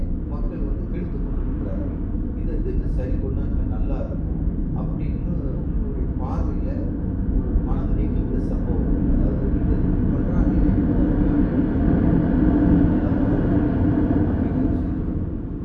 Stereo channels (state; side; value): identical; both; correlation 1.00